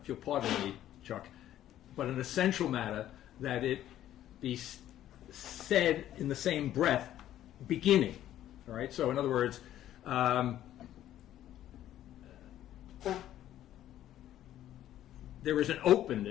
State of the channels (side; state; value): right; quieter; 12.4 dB